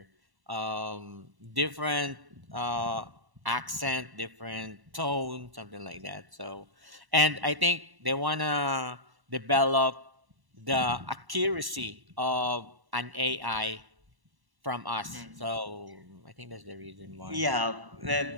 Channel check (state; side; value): late; left; 1.1 ms